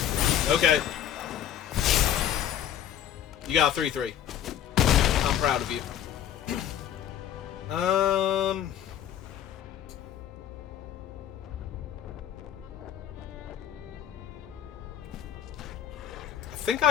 Okay. You got a 3-3. I'm proud of you. I think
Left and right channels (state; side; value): quieter; right; 10.3 dB